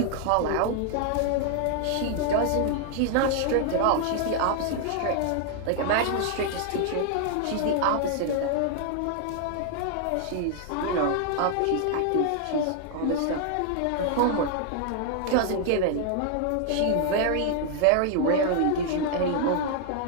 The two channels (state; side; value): different; both; correlation 0.00